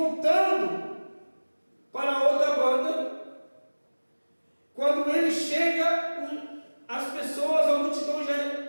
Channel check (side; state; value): both; inverted; correlation -1.00